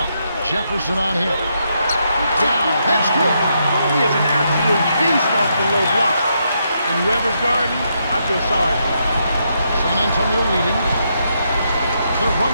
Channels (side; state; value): both; inverted; correlation -0.79